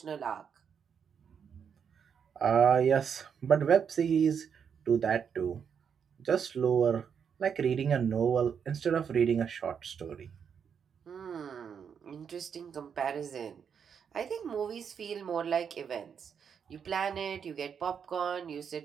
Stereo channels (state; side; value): quieter; left; 7.2 dB